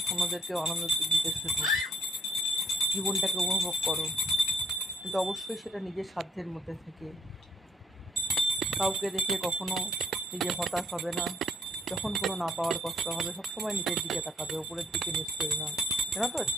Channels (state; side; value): normal; both; correlation 0.67